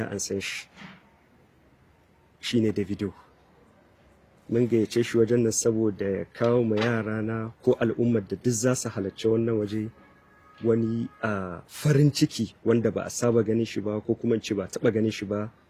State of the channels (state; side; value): identical; both; correlation 1.00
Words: an san shi. Shine Davido. Mun gayyace shi wajen nan saboda ya kawo ma yara na ko al'ummar da duk za su halarci wannan waje wani farin ciki wanda ba a saba ganin shi ba ko kuma ce ba taba ganin shi ba